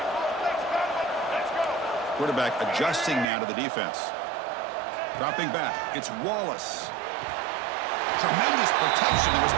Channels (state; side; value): drops out; left; at 3.2 s